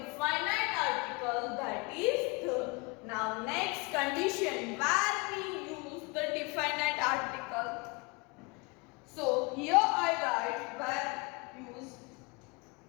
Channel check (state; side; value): quieter; right; 27.8 dB